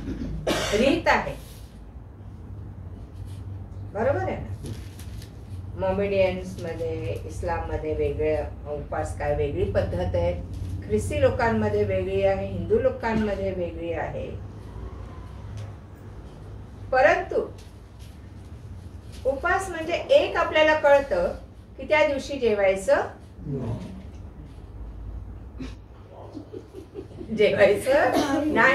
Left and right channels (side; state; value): both; identical; correlation 1.00